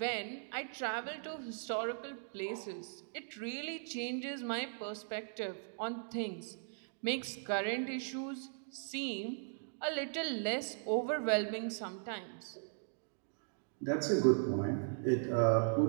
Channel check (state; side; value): silent; left; digital silence